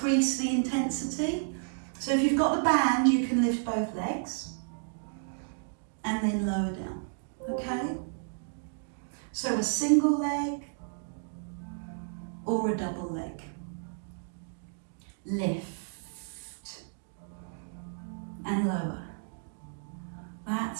the intensity. So if you've got the band, you can lift both legs and then lower down, okay? So a single leg or a double leg. Lift and lower.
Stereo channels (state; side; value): silent; left; digital silence